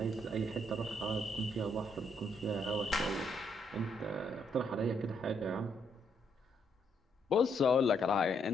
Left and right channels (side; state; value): both; normal; correlation 0.74